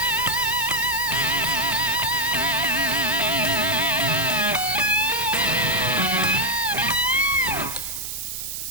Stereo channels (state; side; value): noise; right; hiss, 6 dB below the sound